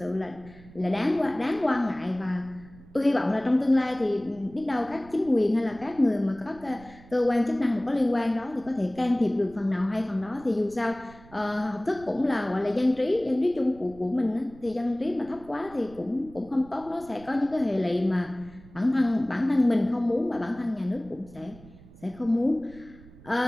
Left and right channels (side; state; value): right; noise; rumble, 21 dB below the sound